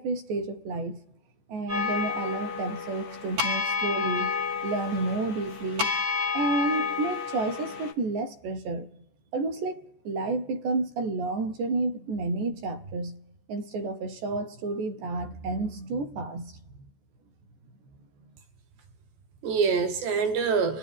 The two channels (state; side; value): late; left; 14 ms